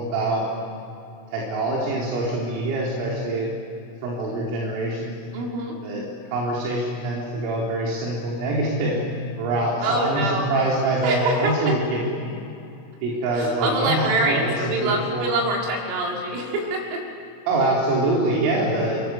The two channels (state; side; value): late; left; 25 ms